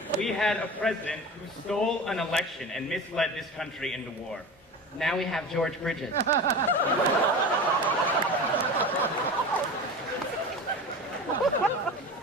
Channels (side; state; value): both; normal; correlation 0.31